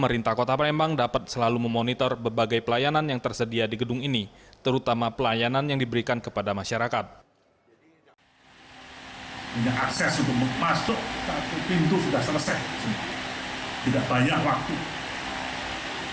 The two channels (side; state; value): both; identical; correlation 1.00